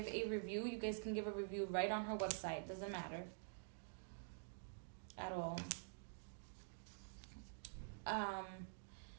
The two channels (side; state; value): left; silent; digital silence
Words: a review, you guys can give a review right on her website. Doesn't matter at all.